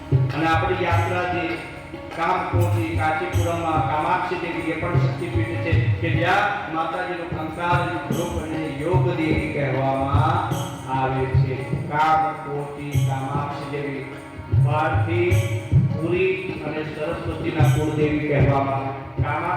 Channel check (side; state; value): both; identical; correlation 1.00